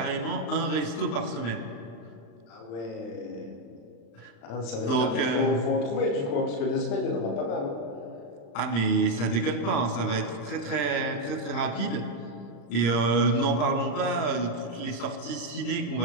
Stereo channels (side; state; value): right; late; 35 ms